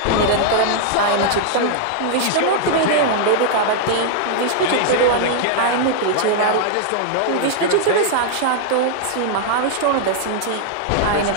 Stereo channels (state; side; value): different; both; correlation -0.01